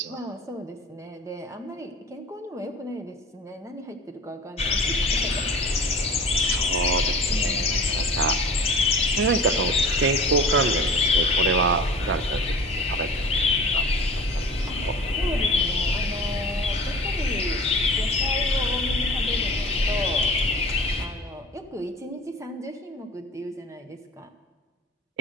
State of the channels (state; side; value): normal; both; correlation 0.40